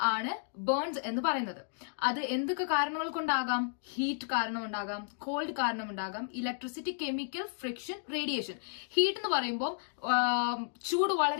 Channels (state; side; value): silent; right; digital silence